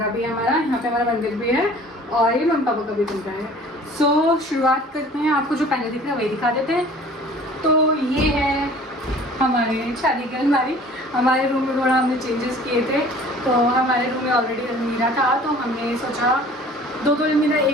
भी है हमारा। यहाँ पे हमारा मंदिर भी है, और ये मम्मी पापा का भी कमरा है। सो शुरुआत करते हैं, आपको जो पहले दिख रहा है वही दिखा देते हैं। तो ये है हमारे शादी की अलमारी। हमारे रूम में थोड़ा हमने चेंजेस किए थे, तो हमारे रूम में ऑलरेडी अलमीरा था, तो हमने सोचा 2 अलमीरा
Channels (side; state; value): both; normal; correlation 0.48